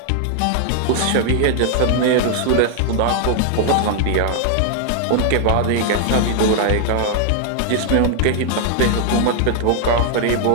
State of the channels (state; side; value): different; both; correlation 0.00